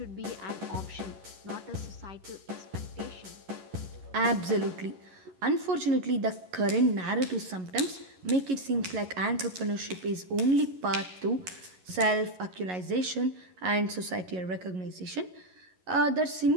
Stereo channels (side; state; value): left; late; 11 ms